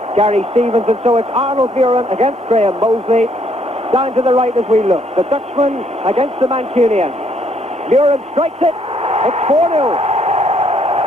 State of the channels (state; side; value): normal; both; correlation 0.68